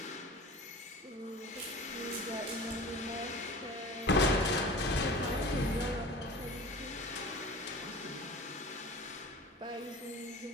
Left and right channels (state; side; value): normal; both; correlation 0.38